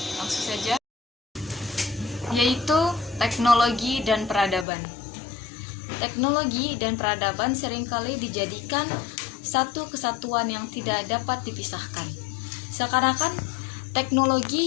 langsung saja, yaitu teknologi dan peradaban. Teknologi dan peradaban seringkali dijadikan satu kesatuan yang tidak dapat dipisahkan. Seakan-akan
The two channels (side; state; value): right; drops out; at 4.7 s